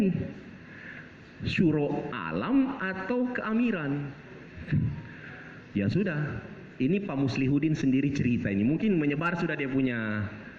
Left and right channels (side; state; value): both; identical; correlation 1.00